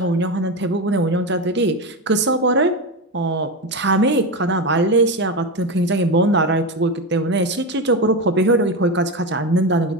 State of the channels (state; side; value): normal; both; correlation 0.16